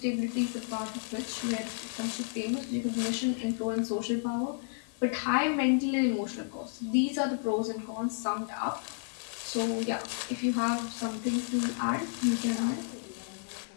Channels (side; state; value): right; silent; 57 dB below the other